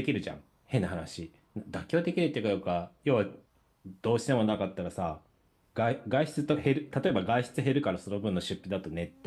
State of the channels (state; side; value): identical; both; correlation 1.00